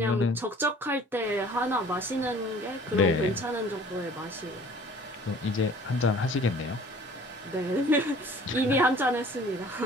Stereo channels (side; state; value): both; normal; correlation 0.49